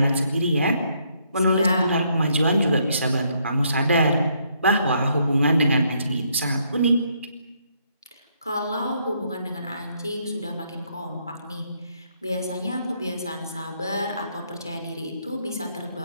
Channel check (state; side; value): inverted; both; correlation -0.72